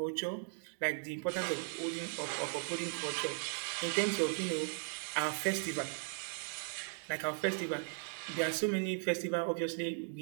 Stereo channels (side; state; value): left; silent; 53 dB below the other